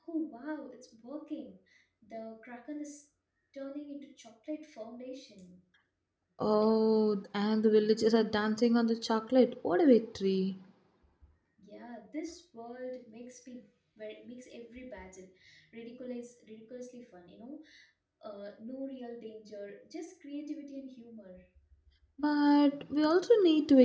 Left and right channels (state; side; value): identical; both; correlation 1.00